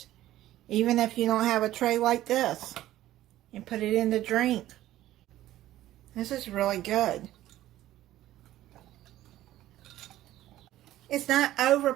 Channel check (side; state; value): left; quieter; 14.3 dB